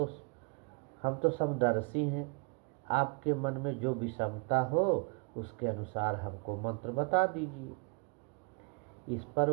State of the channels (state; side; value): quieter; left; 36.2 dB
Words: हम तो समदर्शी हैं। आपके मन में जो विषमता हो उसके अनुसार हमको मंत्र बता दीजिए। इस पर